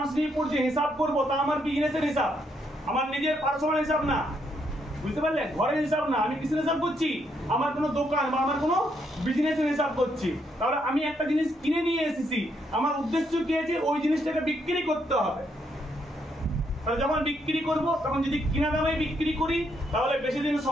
নিয়ে পড়ছি হিসাব করবো, তা আমার বিজনেসের হিসাব, আমার নিজের পার্সোনাল হিসাব না। বুঝতে পারলে? ঘরের হিসাব না। আমি কিসের হিসাব করছি? আমার কোনো দোকান বা আমার কোনো বিজনেসের হিসাব করছি। তাহলে আমি একটা জিনিস কিনে নিয়ে এসেছি, আমার উদ্দেশ্য কি আছে? ওই জিনিসটাকে বিক্রি করতে হবে। তাহলে যখন বিক্রি করব তখন যদি কিনা দামে বিক্রি করি তাহলে বেশি দিন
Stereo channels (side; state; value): both; normal; correlation 0.75